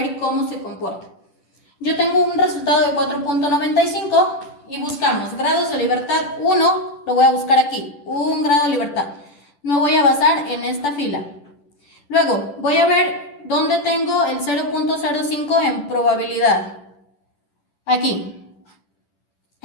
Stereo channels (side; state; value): right; late; 10 ms